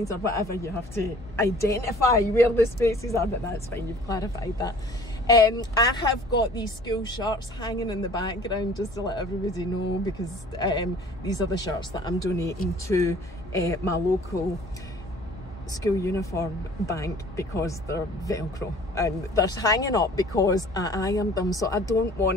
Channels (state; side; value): noise; left; hum, 19 dB below the sound